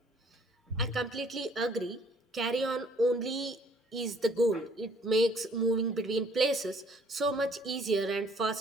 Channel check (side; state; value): both; normal; correlation 0.60